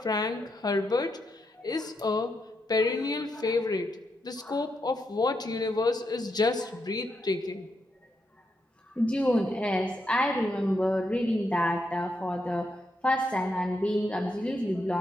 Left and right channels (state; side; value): normal; both; correlation 0.82